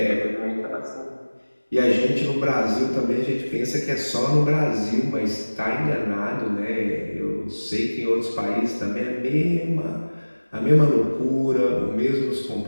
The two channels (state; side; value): inverted; both; correlation -1.00